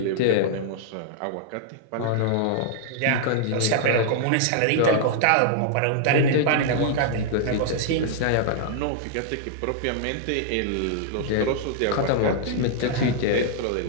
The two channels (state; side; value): different; both; correlation -0.01